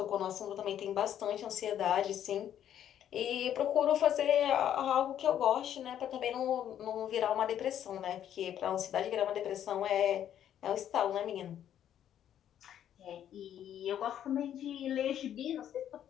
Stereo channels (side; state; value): right; quieter; 10.4 dB